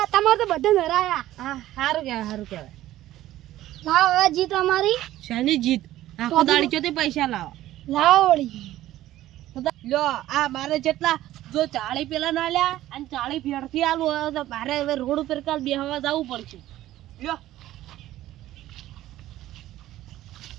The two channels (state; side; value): quieter; left; 14.4 dB